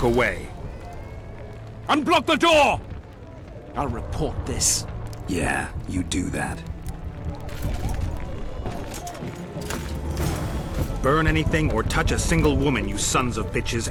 away. Unblock the door! I'll report this. Yeah, you do that. Burn anything or touch a single woman, you sons of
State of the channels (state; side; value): identical; both; correlation 1.00